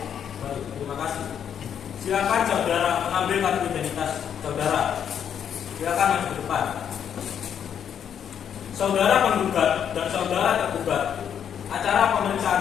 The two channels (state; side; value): quieter; right; 8.5 dB